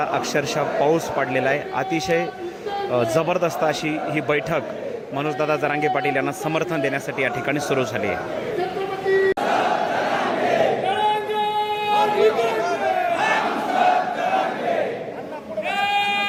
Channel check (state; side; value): identical; both; correlation 1.00